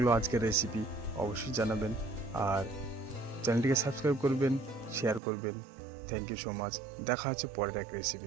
আজকের রেসিপি অবশ্যই জানাবেন, আর চ্যানেলটিকে সাবস্ক্রাইব করবেন, শেয়ার করবেন। Thank you so much. দেখা হচ্ছে পরের এক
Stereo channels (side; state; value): left; drops out; at 5.2 s